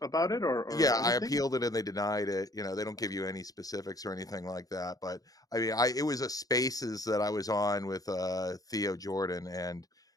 about it or Yeah, anything? I appealed it and they denied it. You know, they don't give you any specifics or anything like that. But I mean, it was a Spaces that I was on with Theo Jordan, and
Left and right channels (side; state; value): right; late; 0.18 ms